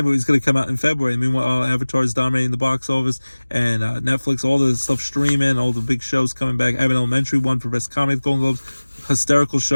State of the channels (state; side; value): inverted; both; correlation -1.00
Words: movie is going to come out in February. Meanwhile, Avatar's dominating the box office. And Netflix, all the stuff streaming, all the big shows coming back. Abbott Elementary won for Best Comedy at the Golden Globes. Hysterical